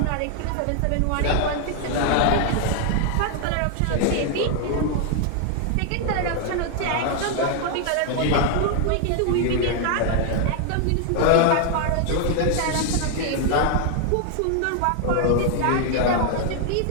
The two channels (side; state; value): both; different; correlation 0.00